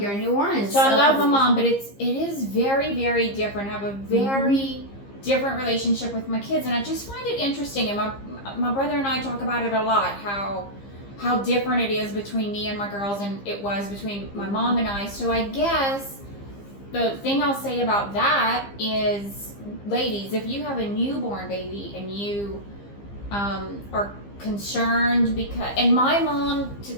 in New Orleans. So I love my mom, but it is very, very different. I have a very different relationship with my kids, and I just find it interesting. And my brother and I talk about it a lot. How different it is between me and my girls, and it was between my mom and I. So I guess the thing I'll say about that is, ladies, if you have a newborn baby and you are concerned and my mom, to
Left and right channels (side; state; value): right; late; 15 ms